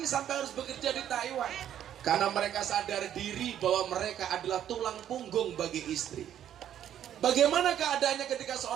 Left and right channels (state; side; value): quieter; left; 10.5 dB